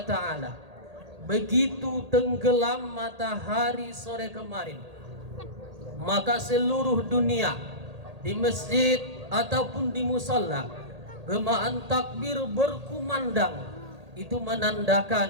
taala, begitu tenggelam matahari sore kemarin, maka seluruh dunia di masjid ataupun di musalla gemaan takbir berkumandang. Itu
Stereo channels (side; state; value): left; late; 1.8 ms